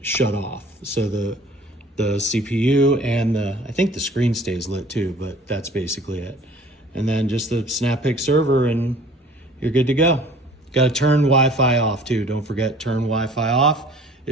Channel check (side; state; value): both; normal; correlation 0.50